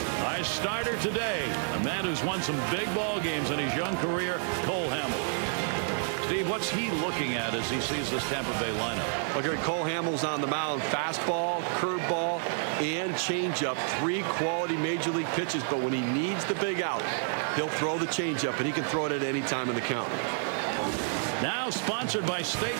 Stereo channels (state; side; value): silent; left; 58 dB below the other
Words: Our starter today, a man who's won some big ball games in his young career, Cole Hamels. Steve, what's he looking at as he sees this Tampa Bay lineup? Well, Gary, Cole Hamels on the mound. Fastball, curveball, and changeup. 3 quality Major League pitches, but when he needs the big out, he'll throw the changeup, and he can throw it at any time in the count. Now sponsored by State